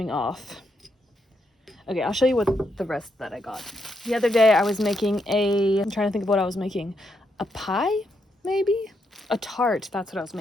off. Okay, I'll show you what the rest that I got. The other day I was making I'm trying to think of what I was making. A pie, maybe? A tart, that's what I was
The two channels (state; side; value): normal; both; correlation 0.79